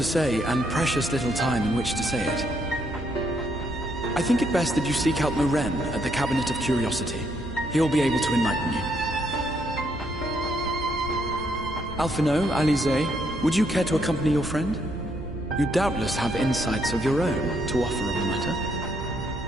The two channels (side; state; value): right; noise; hum, 12 dB below the sound